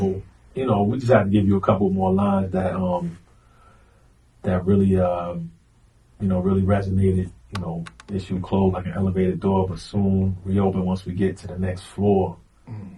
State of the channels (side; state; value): both; identical; correlation 1.00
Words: you know, we just had to give you a couple more lines that really really resonated. You know, issue closed like an elevated door, but soon reopen once we get to the next floor.